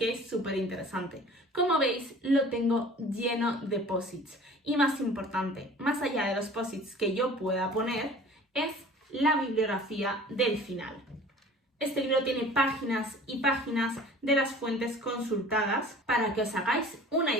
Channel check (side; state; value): both; normal; correlation 0.45